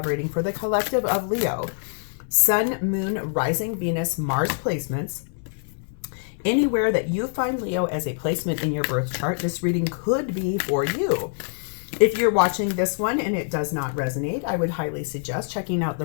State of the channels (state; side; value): silent; right; 62 dB below the other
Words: reading for the collective of Leo. Sun, Moon, Rising, Venus, Mars placements. Anywhere that you find Leo as a placement in your birth chart, this reading could be for you. If you're watching this one and it does not resonate, I would highly suggest checking out